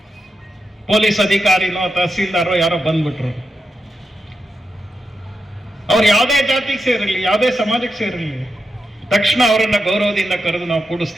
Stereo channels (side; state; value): both; normal; correlation 0.87